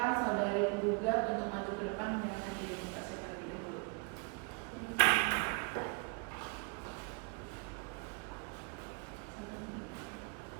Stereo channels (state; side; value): quieter; left; 33.9 dB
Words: saudari penggugat untuk maju ke depan menanyakan identitasnya terlebih dahulu.